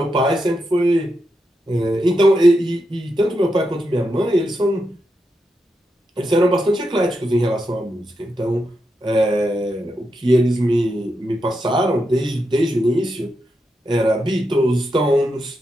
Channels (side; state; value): both; normal; correlation 0.85